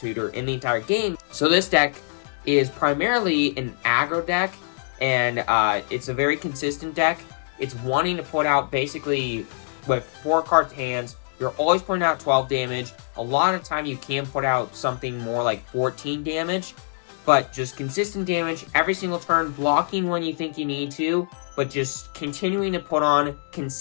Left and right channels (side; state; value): right; silent; digital silence